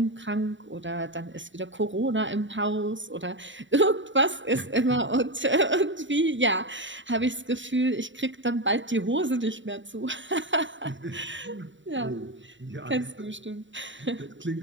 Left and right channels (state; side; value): late; left; 0.55 ms